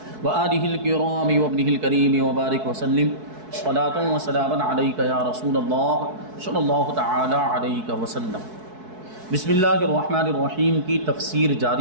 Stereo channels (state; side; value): late; left; 4.6 ms